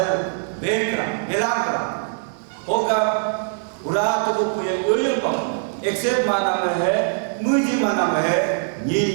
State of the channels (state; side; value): silent; left; digital silence